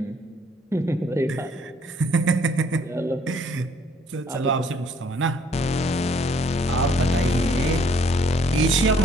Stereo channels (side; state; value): both; normal; correlation 0.63